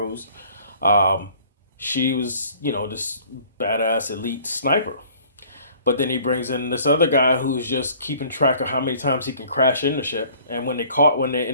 Um, she was, this badass elite sniper. But then he brings in this other guy who's just keeping track of how many times he can crash in the ship. And when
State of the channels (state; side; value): inverted; both; correlation -0.54